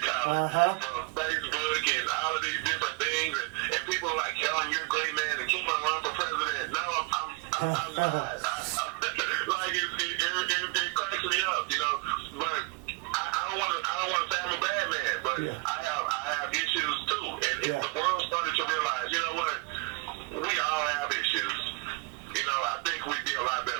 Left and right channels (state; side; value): quieter; left; 28.1 dB